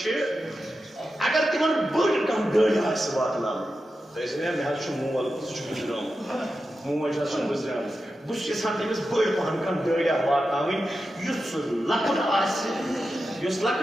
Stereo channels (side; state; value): both; normal; correlation 0.91